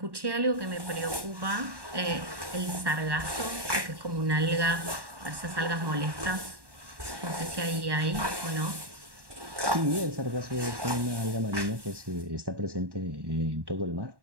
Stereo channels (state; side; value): late; left; 1.1 ms